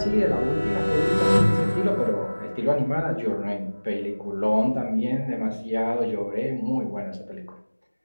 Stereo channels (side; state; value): both; inverted; correlation -1.00